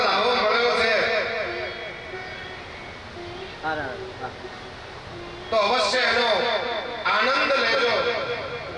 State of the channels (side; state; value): both; identical; correlation 1.00